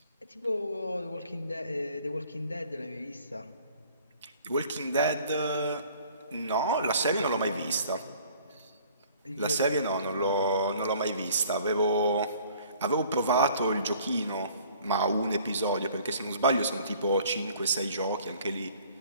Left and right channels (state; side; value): inverted; both; correlation -0.54